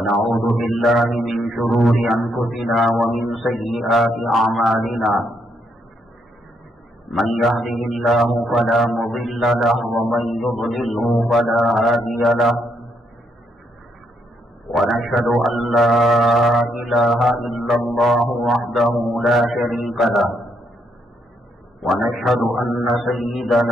بالله من شرور أنفسنا ومن سيئات أعمالنا من يهده الله فلا مضل له ومن يضلله فلا هادي له ونشهد أن لا إله إلا الله وحده لا شريك له ونشهد أن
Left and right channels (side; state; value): both; normal; correlation 0.75